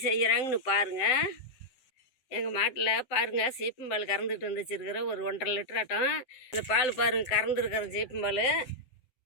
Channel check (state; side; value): late; right; 7.5 ms